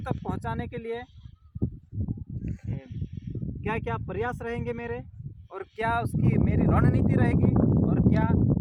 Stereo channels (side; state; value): both; identical; correlation 1.00